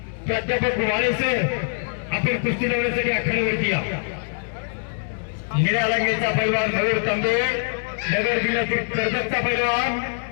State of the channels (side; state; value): right; silent; 63 dB below the other